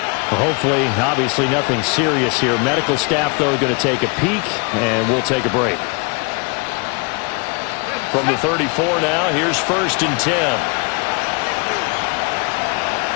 Hopefully, obviously, nothing serious here. Medical staff, though, going to take a peek, and we'll take a break. From the 34 now, here's 1st and 10.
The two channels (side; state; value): right; quieter; 31.8 dB